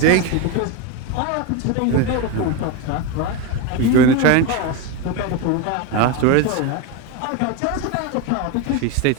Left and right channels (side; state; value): both; different; correlation 0.04